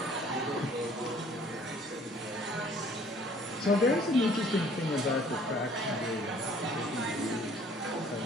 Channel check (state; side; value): normal; both; correlation 0.56